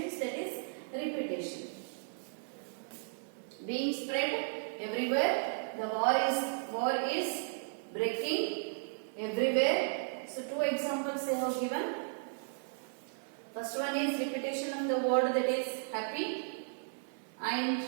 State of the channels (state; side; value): silent; left; digital silence